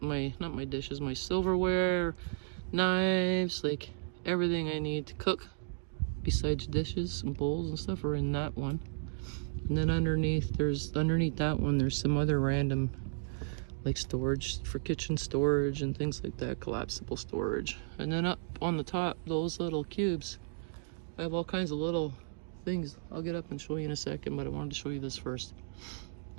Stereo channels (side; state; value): left; silent; digital silence